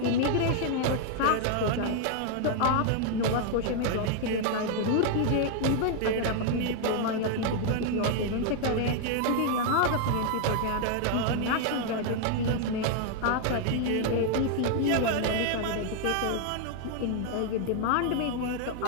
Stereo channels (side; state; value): both; different; correlation 0.00